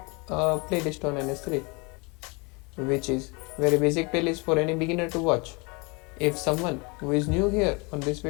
a playlist on NS3, which is very basic playlist for any beginner to watch. If someone who is new here on this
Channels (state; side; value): quieter; right; 29.4 dB